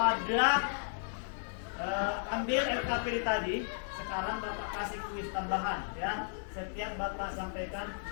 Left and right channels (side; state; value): right; silent; digital silence